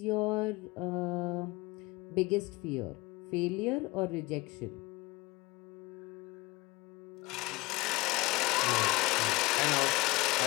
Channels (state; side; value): quieter; right; 22.1 dB